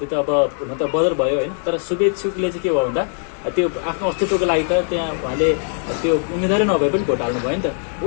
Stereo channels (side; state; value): right; silent; 58 dB below the other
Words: त अब हुन त बदर भयो होइन। तर शुभेच्छुकले चाहिँ के भयो भन्दा त्यो आफ्नो अस्तित्वको लागि त त्यहाँ उहाँले त्यो उम्मेदवारै नभए पनि भोट हाल्नु भयो नि त।